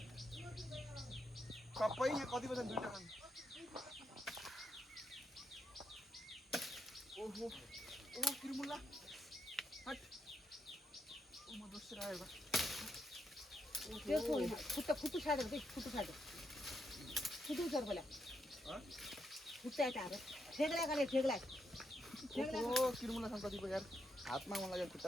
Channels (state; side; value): normal; both; correlation 0.81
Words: सबै यहाँ कति बजे दुईटा खानु ओहो ओहो किरमुल्ला हट ओ म दोस्रो आयो त्यो खुट्टा खुट्टु छाड्यो कि खुट्टु छाड्यो खुट्टु छाड बोला खुट्टा यता ठेगला गरे ठेगला ओ किरमुल्ला छ कतिको यार हातमा मन लाग्यो खुट्टा